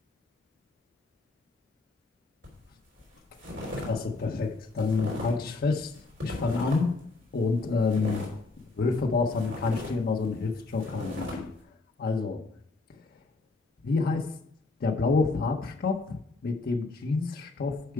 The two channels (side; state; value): right; quieter; 3.6 dB